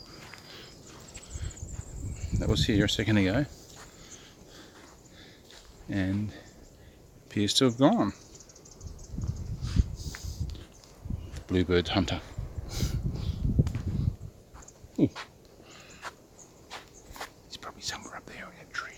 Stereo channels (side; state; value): both; identical; correlation 1.00